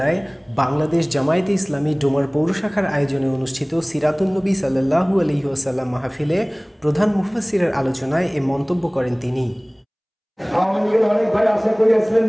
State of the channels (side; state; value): both; identical; correlation 1.00